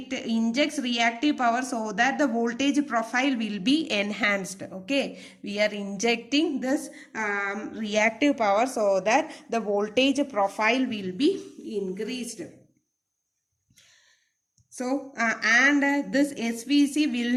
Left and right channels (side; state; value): both; identical; correlation 1.00